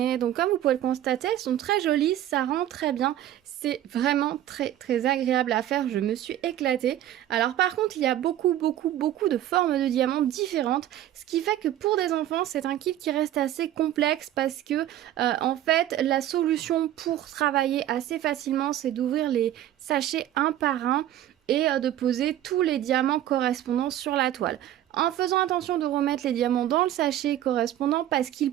Donc comme vous pouvez le constater, elles sont très jolies, ça rend très bien. C'est vraiment très agréable à faire, je me suis éclatée. Alors par contre, il y a beaucoup de formes de diamants différentes. Ce qui fait que pour des enfants, c'est un kit qui reste assez complexe parce que en fait, la solution pour travailler assez facilement, c'est d'ouvrir les sachets un par un et de poser tous les diamants correspondants sur la toile en faisant attention de remettre les diamants dans le sachet correspondant parce qu'il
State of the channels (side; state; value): left; quieter; 12.4 dB